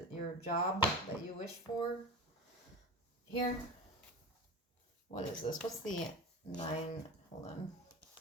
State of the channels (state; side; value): normal; both; correlation 0.30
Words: your job that you wish for. Here. What is this? What's the nine? Hold on.